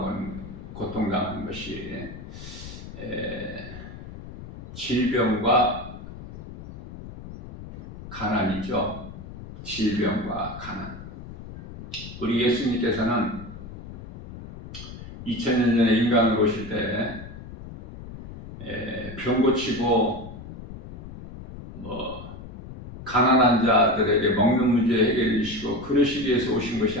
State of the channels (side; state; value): left; noise; rumble, 13 dB below the sound